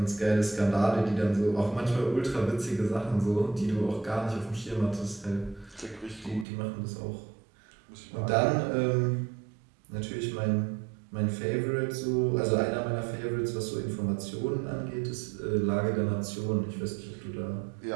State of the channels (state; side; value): drops out; left; at 6.5 s